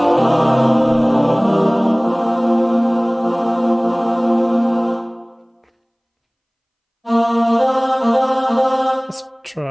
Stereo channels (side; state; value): both; identical; correlation 1.00